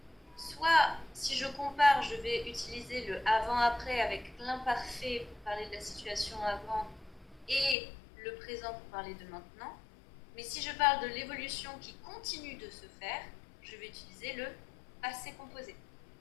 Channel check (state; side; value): drops out; right; at 7.8 s